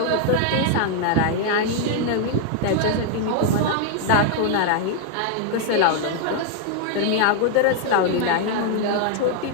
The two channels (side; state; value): both; different; correlation 0.00